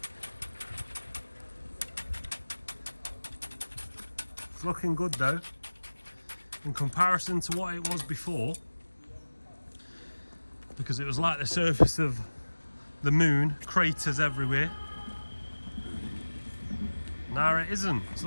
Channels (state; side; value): inverted; both; correlation -1.00